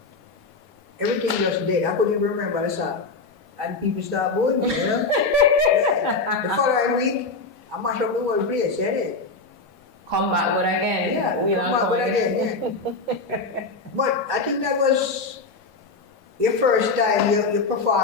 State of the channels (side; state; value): right; quieter; 3.9 dB